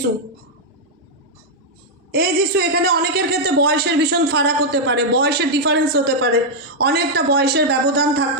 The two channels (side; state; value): both; normal; correlation -0.03